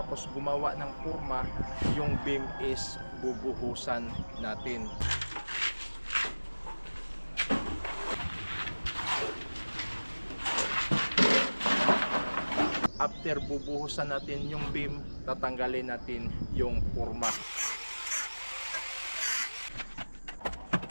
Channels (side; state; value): both; inverted; correlation -1.00